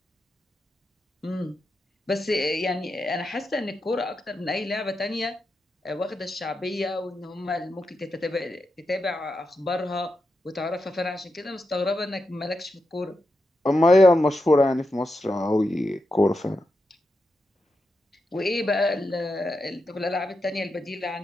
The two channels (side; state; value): both; normal; correlation 0.87